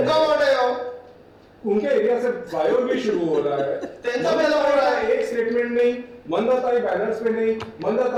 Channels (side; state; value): both; identical; correlation 1.00